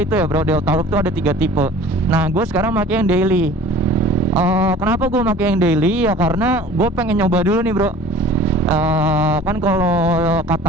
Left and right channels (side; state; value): both; normal; correlation 0.45